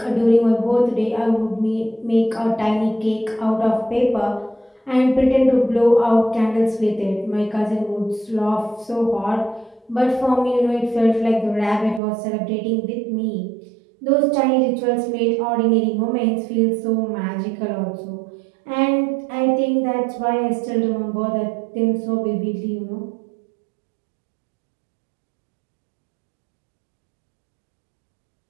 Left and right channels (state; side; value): drops out; left; at 12.0 s